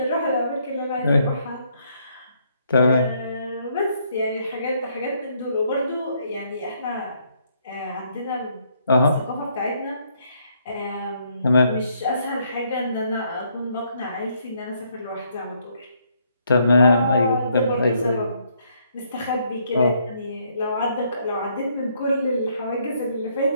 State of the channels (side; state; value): both; inverted; correlation -0.71